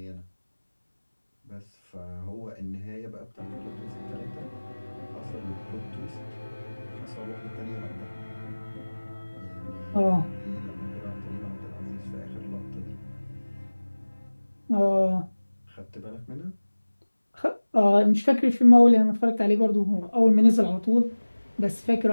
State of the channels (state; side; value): inverted; both; correlation -1.00